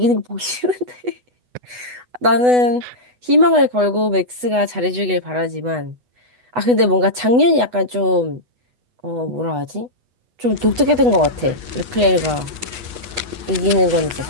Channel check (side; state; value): left; late; 8.1 ms